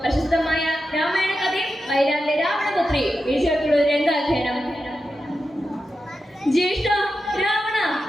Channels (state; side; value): normal; both; correlation 0.90